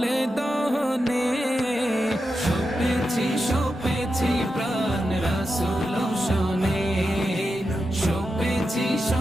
দহনে, সপেছি প্রাণ রাসূল শোনে, সপেছি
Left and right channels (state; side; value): normal; both; correlation 0.89